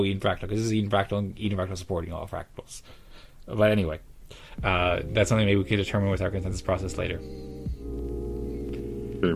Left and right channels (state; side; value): identical; both; correlation 1.00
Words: Eden Fractal, because this is Eden Fractal, and Eden Fractal supporting all fractals. But anyway, that's something maybe we could determine with our consensus process later. Okay.